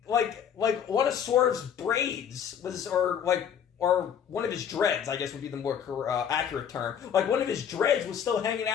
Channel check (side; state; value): right; quieter; 8.3 dB